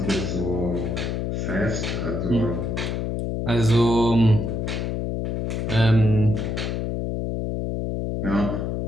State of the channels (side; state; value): left; noise; hum, 1 dB below the sound